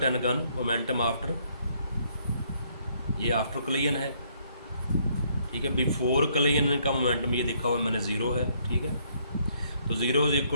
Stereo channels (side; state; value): both; inverted; correlation -0.68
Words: and gun momentum after, ये आफ्टर कोलिजन है, ठीक है। बिफोर कोलिजन का मोमेंटम ये देखा हुआ मैंने ज़ीरो है, ठीक है। तो zero is